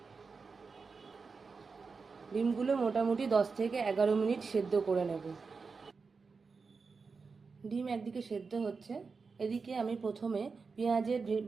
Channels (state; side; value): quieter; left; 4.8 dB